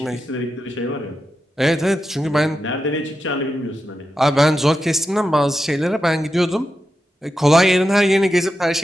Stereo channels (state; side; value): normal; both; correlation 0.89